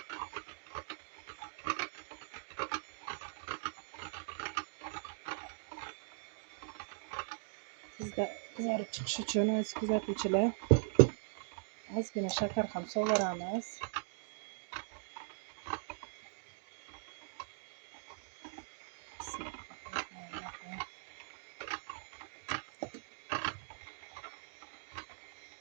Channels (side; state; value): left; silent; digital silence